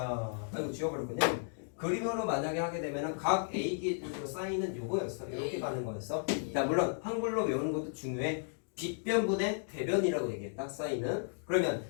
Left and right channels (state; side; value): silent; right; digital silence